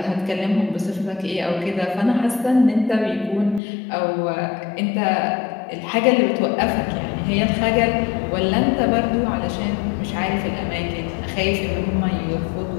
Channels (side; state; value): right; drops out; at 3.6 s